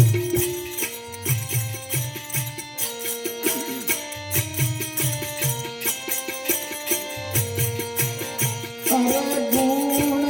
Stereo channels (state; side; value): identical; both; correlation 1.00